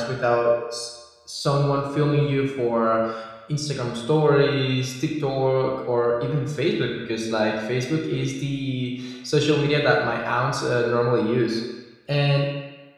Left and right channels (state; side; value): identical; both; correlation 1.00